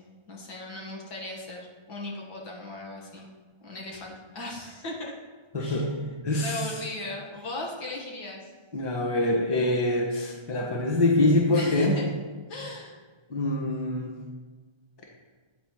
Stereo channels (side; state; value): left; late; 1.2 ms